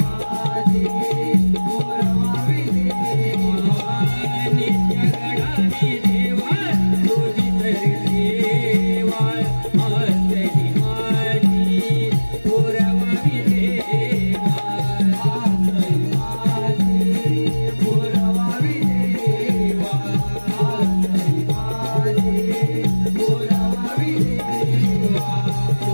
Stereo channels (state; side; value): inverted; both; correlation -1.00